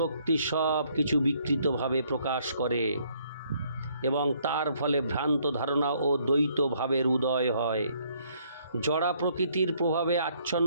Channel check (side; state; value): both; inverted; correlation -0.66